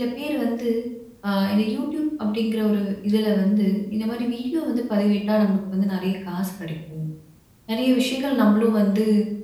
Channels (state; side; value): identical; both; correlation 1.00